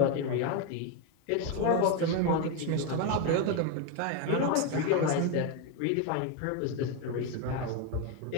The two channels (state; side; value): different; both; correlation 0.02